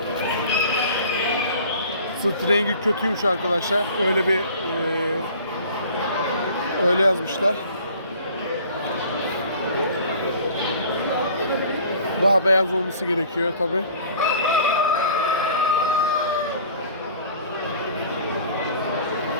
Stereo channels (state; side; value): inverted; both; correlation -0.47